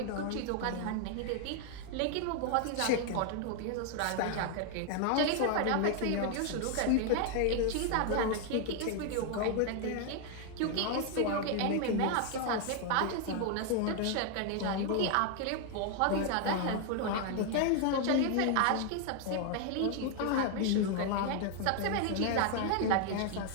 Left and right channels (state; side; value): different; both; correlation 0.00